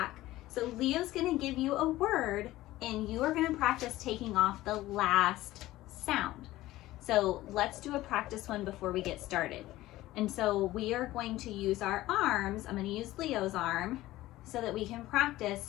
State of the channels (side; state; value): right; quieter; 16.5 dB